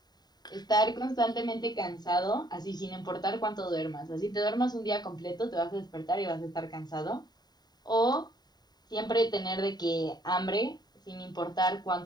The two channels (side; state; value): right; late; 0.20 ms